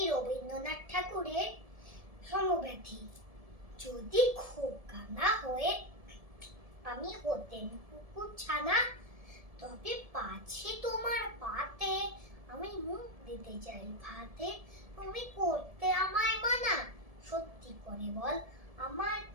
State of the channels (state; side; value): late; left; 1.7 ms